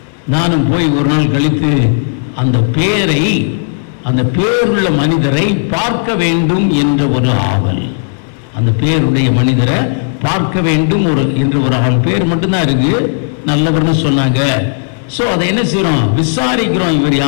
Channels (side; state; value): right; silent; digital silence